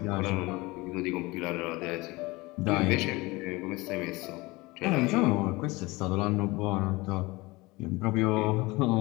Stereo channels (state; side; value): quieter; right; 22.4 dB